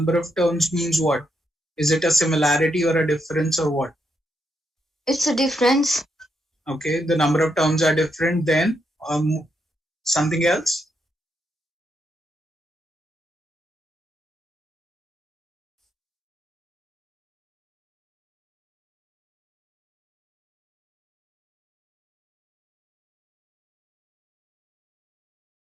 of terms means what? Is it a similarity or a difference or what? It's a difference. Okay, the number of terms are different. Then something else?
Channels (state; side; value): normal; both; correlation 0.80